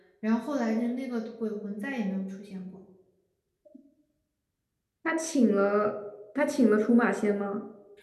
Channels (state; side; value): identical; both; correlation 1.00